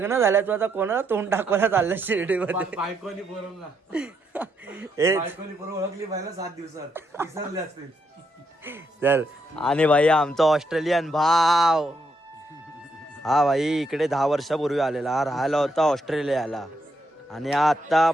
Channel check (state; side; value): normal; both; correlation 0.78